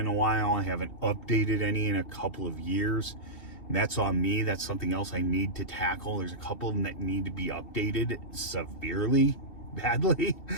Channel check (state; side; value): late; right; 2.7 ms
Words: a while. I haven't updated any in a couple of years. And that's on me. That's something else I need to tackle. There's a couple of them that need to be updated severely, badly.